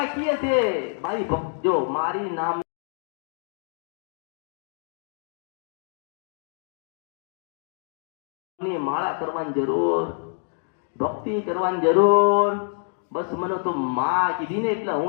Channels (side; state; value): right; silent; digital silence